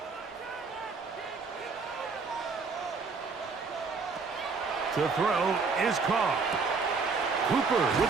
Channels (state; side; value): quieter; left; 4.7 dB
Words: To throw is Carr. Cooper